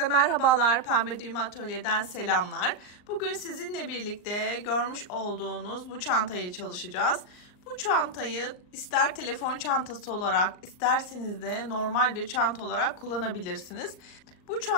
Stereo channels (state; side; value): late; right; 39 ms